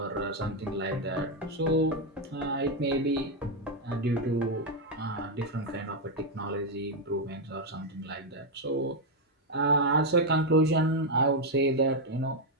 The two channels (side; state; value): both; normal; correlation 0.02